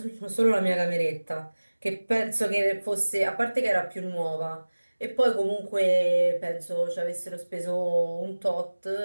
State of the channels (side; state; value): both; inverted; correlation -1.00